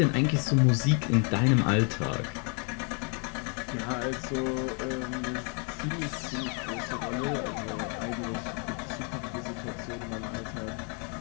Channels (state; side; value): quieter; right; 37.9 dB